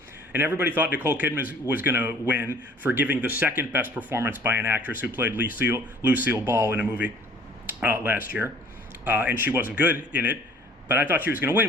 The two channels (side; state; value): both; normal; correlation 0.53